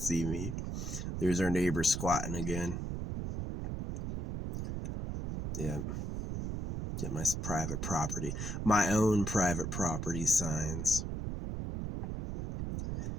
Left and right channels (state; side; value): noise; right; rumble, 4 dB below the sound